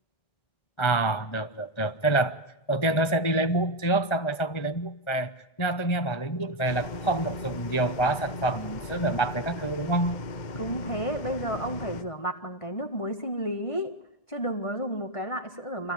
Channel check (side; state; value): right; late; 1.4 ms